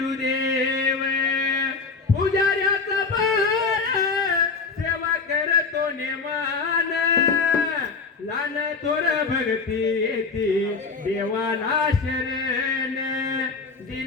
पुजाऱ्याचा बाळ सेवा करतो नेमान लहान थोर भक्ती येते देवाला शरण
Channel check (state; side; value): quieter; right; 4.6 dB